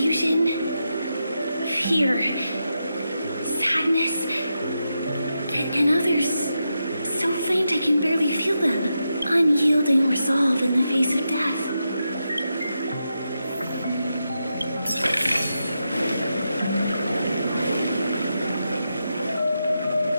fear, sadness, and others so faint I can barely feel them. Unyielding resolve in the face of death.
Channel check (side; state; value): both; inverted; correlation -0.87